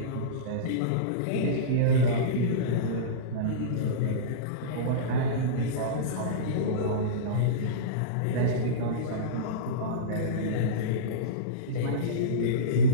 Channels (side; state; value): both; different; correlation -0.07